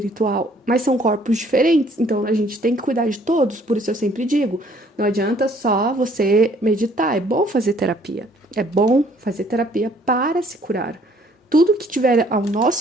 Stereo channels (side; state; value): both; normal; correlation 0.61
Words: mas são corpos diferentes, então a gente tem que cuidar de todos, por isso eu sempre digo, não adianta só você meditar, é bom fazer terapia para se curar. Tudo que tiver ao